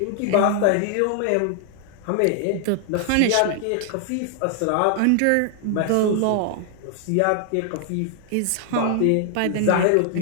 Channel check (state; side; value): different; both; correlation 0.00